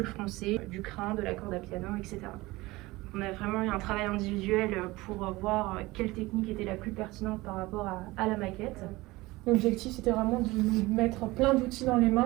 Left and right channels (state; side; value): quieter; left; 20.5 dB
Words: froncé, du crin, de la corde à piano, etc. On a vraiment eu un travail individuel pour voir quelle technique était la plus pertinente par rapport à la maquette. L'objectif, c'était vraiment de nous mettre plein d'outils dans les